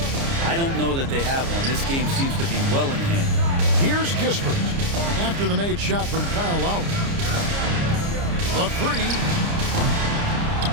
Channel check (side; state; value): left; late; 29 ms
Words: I don't know that they have one. This game seems to be well in hand. Here's Kispert after the made shot from Kyle Lowry. The 3.